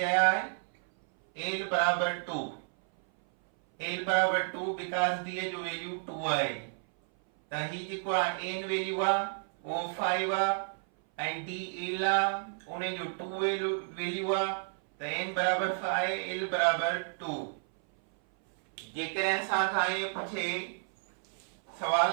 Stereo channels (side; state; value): left; silent; 57 dB below the other